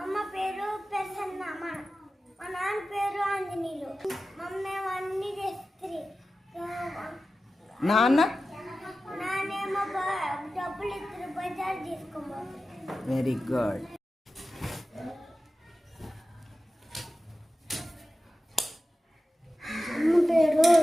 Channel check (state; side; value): normal; both; correlation 0.94